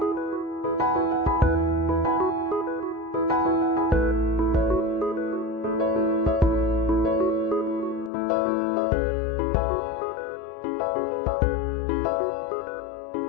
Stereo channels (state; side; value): drops out; right; at 8.1 s